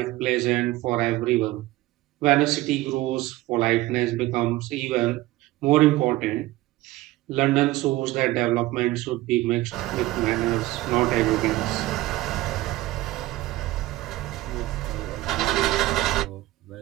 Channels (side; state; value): left; quieter; 17.7 dB